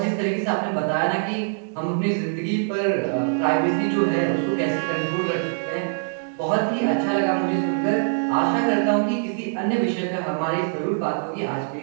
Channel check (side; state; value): left; silent; digital silence